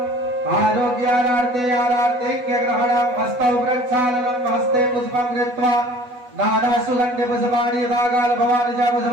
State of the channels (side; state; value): left; late; 8.1 ms